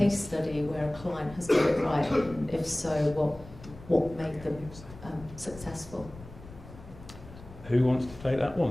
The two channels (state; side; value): noise; left; rumble, 17 dB below the sound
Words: study where a client has got it right, and if so, what made them successful? Who wants to take that